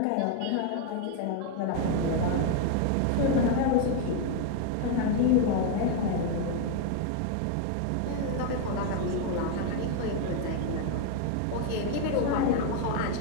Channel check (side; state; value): both; different; correlation 0.00